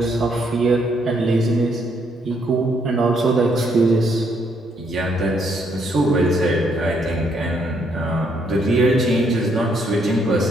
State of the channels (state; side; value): normal; both; correlation 0.72